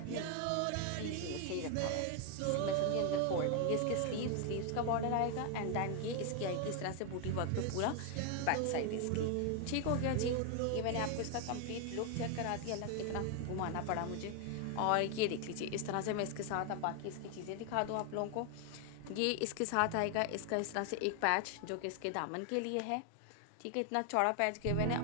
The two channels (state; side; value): different; both; correlation 0.00